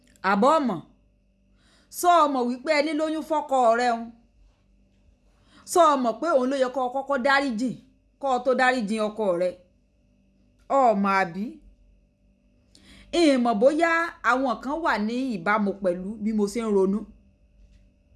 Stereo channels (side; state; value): both; identical; correlation 1.00